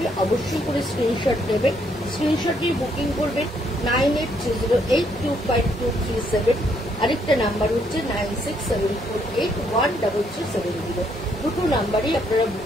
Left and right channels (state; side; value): normal; both; correlation 0.71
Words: অবশ্যই করে স্ক্রিনশট নেবেন, স্ক্রিনশট নিয়ে বুকিং করবেন 9830825237। আরেকটা নাম্বার হচ্ছে 9674813370। দুটো নাম্বারই আপনারা